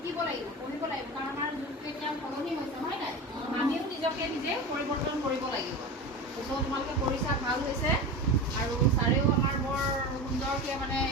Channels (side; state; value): both; normal; correlation 0.27